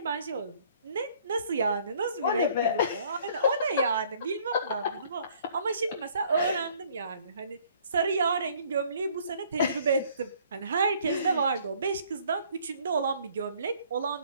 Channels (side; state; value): both; inverted; correlation -0.59